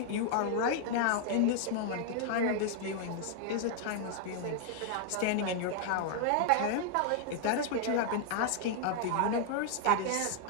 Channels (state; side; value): different; both; correlation 0.00